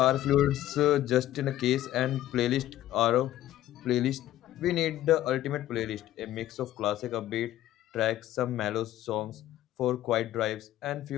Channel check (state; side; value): quieter; right; 13.6 dB